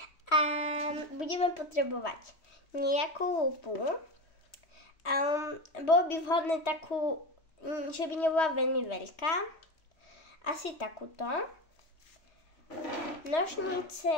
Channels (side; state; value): right; late; 3.1 ms